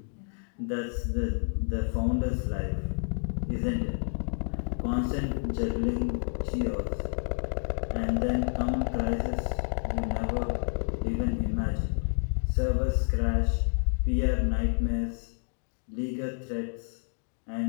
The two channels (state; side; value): silent; right; 58 dB below the other